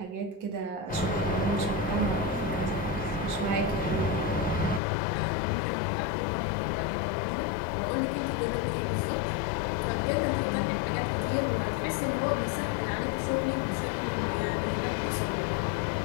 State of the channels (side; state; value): right; drops out; at 4.8 s